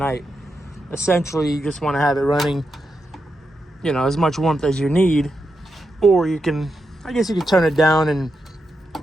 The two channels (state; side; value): normal; both; correlation 0.86